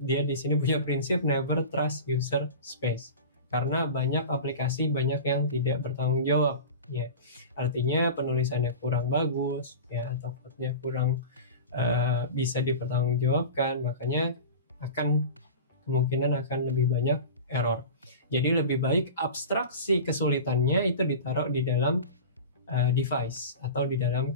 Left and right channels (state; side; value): inverted; both; correlation -0.32